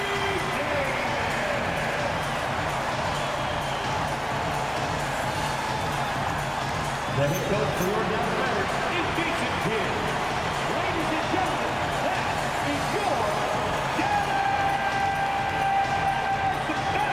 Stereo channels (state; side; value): identical; both; correlation 1.00